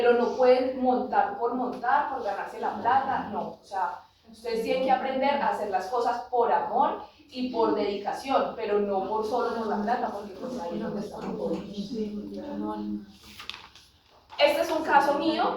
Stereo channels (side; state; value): both; identical; correlation 1.00